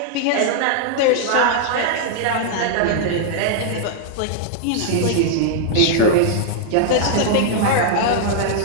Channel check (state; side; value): different; both; correlation -0.01